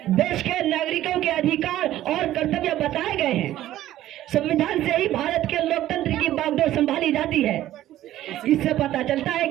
देश के नागरिकों के अधिकार और कर्तव्य बताए गए हैं। संविधान से ही भारत के लोकतंत्र की बागडोर संभाली जाती है। इससे पता चलता है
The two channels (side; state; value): left; quieter; 13.7 dB